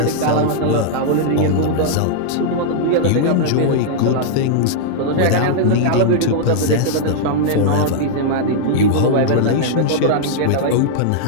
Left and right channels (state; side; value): different; both; correlation -0.01